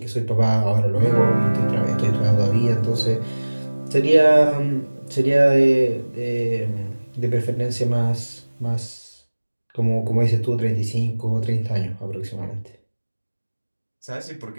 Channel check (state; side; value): inverted; both; correlation -1.00